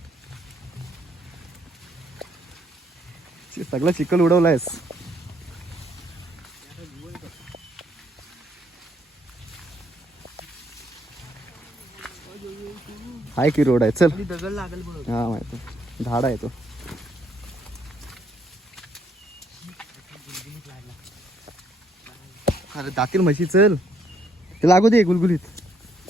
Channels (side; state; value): both; normal; correlation 0.71